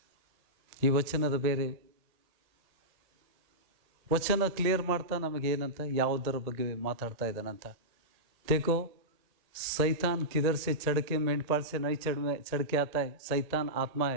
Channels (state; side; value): late; left; 1.8 ms